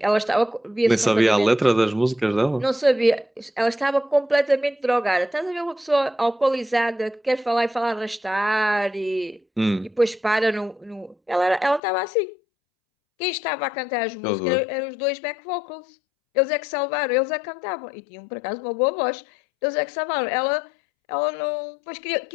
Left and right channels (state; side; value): drops out; right; at 11.8 s